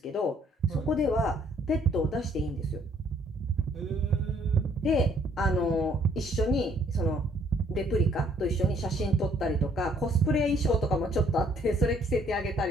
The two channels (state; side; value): normal; both; correlation 0.64